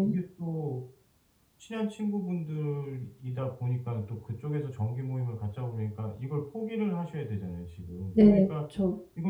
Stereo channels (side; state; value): both; identical; correlation 1.00